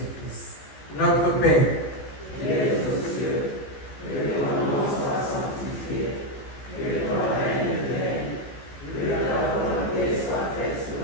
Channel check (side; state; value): right; late; 14 ms